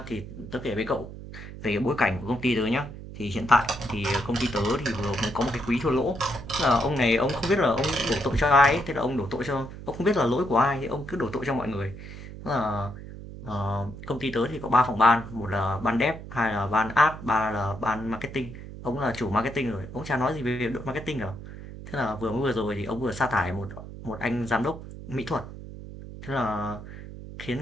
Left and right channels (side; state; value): right; noise; hum, 12 dB below the sound